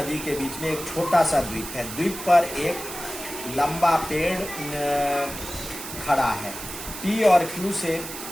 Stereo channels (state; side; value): noise; right; hiss, 10 dB below the sound